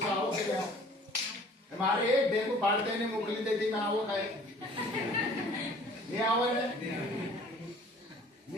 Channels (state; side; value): normal; both; correlation 0.51